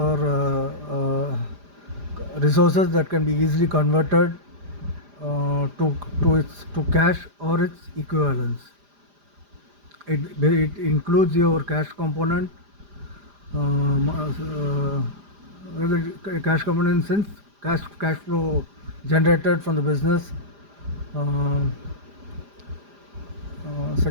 resources that can be easily converted to cash or its equivalents. It includes your cash component, cash component in sense cash flow generated from the business. Uh,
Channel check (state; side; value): late; left; 5.0 ms